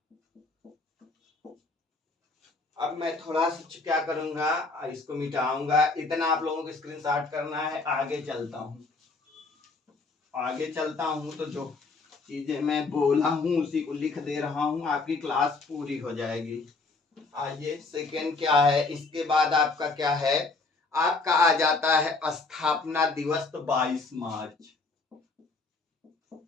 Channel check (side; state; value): right; quieter; 3.8 dB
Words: अब मैं थोड़ा सा क्या करूंगा, इसको मिटाऊंगा। इतना आप लोगों को स्क्रीनशॉट करना है। आगे चलता हूं तो जो चीजें मैं बोला हूं उसी को लिख दे रहा हूं। आपकी क्लास पूरी हो जाएगी। आइए, सेकेंड क्या है? इसके बाद आपका क्या है? आपका आ जाता है स्थापना दिवस। तो 22 मार्च।